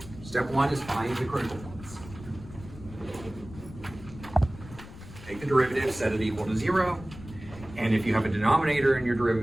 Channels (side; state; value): left; noise; rumble, 16 dB below the sound